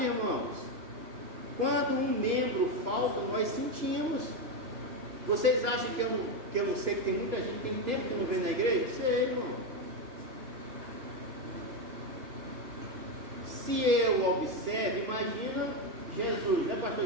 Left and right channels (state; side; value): late; left; 2.9 ms